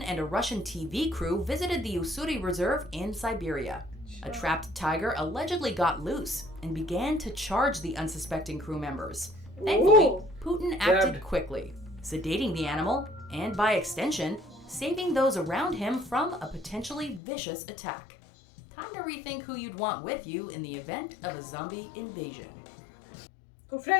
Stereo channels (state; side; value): drops out; right; at 17.2 s